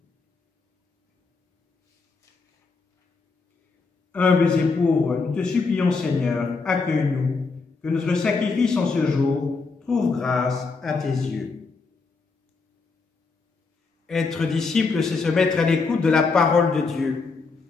Humbles et pauvres, nous te supplions, Seigneur, accueille-nous, que notre sacrifice en ce jour trouve grâce à tes yeux. Être disciple, c'est se mettre à l'écoute de la parole de Dieu.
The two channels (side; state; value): right; quieter; 4.3 dB